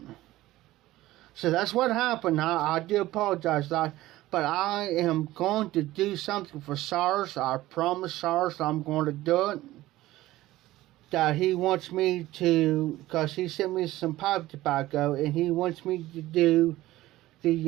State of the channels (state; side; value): quieter; left; 16.5 dB